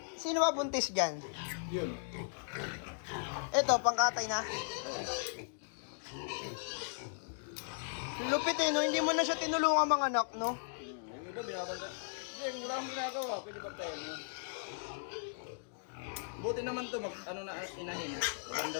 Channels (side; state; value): right; silent; digital silence